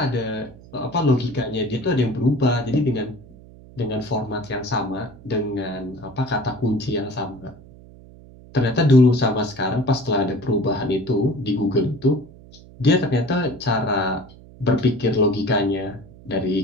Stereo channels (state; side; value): noise; right; hum, 21 dB below the sound